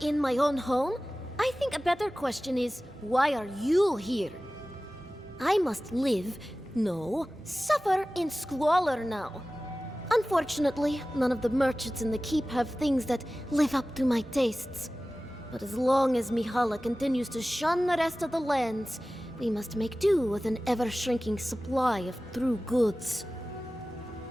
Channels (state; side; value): normal; both; correlation 0.97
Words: my own home? I think a better question is, why are you here? I must live, no, suffer in squalor now. Unfortunately, none of the merchants in the keep have things that live up to my tastes. But as long as Mihala continues to shun the rest of the lands, We must make do with an ever-shrinking supply of true goods.